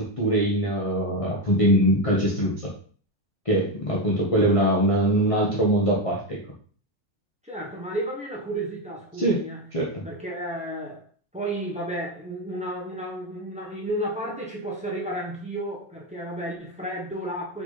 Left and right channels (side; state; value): both; normal; correlation 0.10